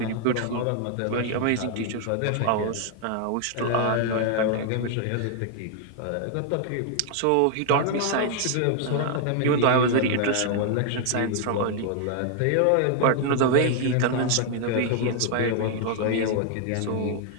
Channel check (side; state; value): both; different; correlation 0.00